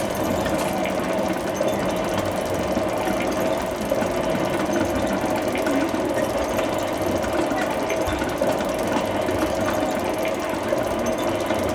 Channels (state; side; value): identical; both; correlation 1.00